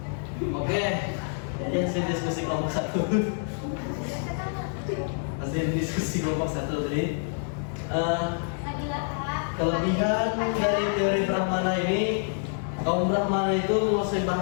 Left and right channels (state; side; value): silent; right; 60 dB below the other